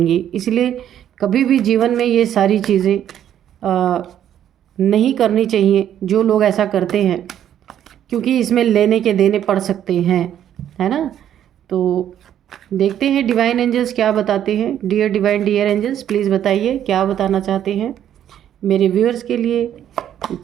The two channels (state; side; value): quieter; left; 10.4 dB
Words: इसलिए कभी भी जीवन में ये सारी चीज़ें नहीं करनी चाहिए जो लोग ऐसा करते हैं, क्योंकि इसमें लेने के देने पड़ सकते हैं, है ना। तो देखते हैं डिवाइन एंजल्स क्या बताते हैं। Dear divine, dear angels, please बताइए क्या बताना चाहते हैं मेरे व्यूअर्स के लिए।